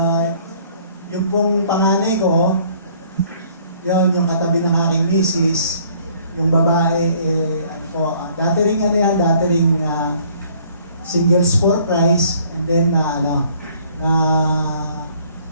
Yung pong panganay ko, yun, yung katabi ng aking misis, yung babae, dati ring singles for Christ, and then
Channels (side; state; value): both; inverted; correlation -0.58